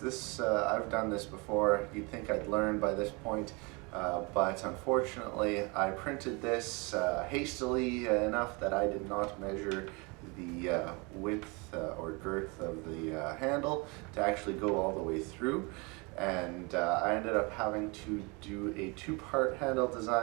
I've done this before. You'd think I'd learn by this point, but unfortunately I printed this hastily enough that I did not measure the width or girth of the handle to actually go all the way through, and I ended up having to do a 2-part handle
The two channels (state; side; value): quieter; left; 29.0 dB